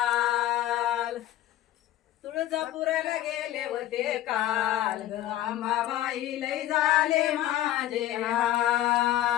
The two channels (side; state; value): right; quieter; 13.7 dB